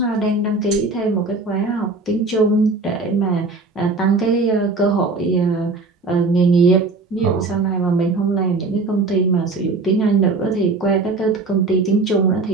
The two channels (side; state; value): left; quieter; 3.6 dB